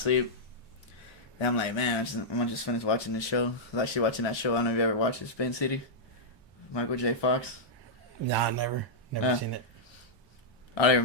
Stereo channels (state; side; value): normal; both; correlation -0.08